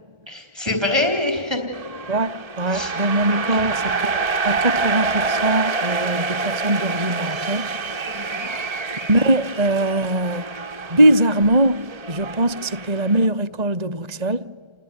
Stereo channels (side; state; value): left; late; 1.3 ms